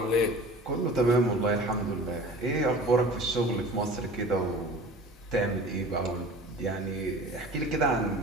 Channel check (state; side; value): normal; both; correlation 0.41